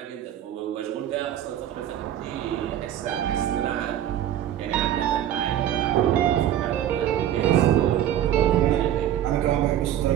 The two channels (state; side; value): quieter; left; 11.3 dB